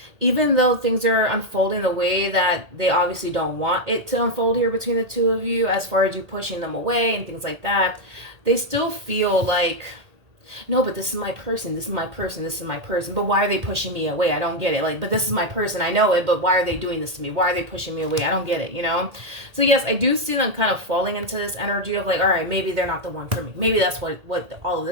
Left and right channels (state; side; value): late; left; 1.8 ms